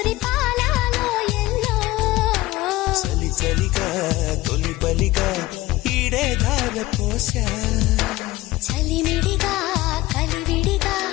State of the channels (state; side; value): quieter; right; 18.2 dB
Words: పాలలో ఎల్లో చలి చలిగా తొలి బలిగా ఈడే ధార పోసా చలిమిడిగా కలివిడిగా